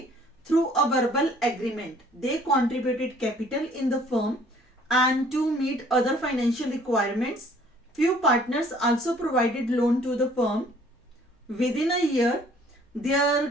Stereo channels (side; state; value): both; normal; correlation 0.57